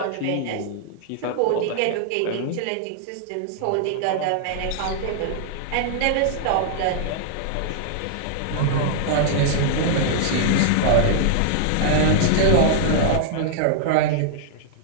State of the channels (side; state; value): both; different; correlation -0.01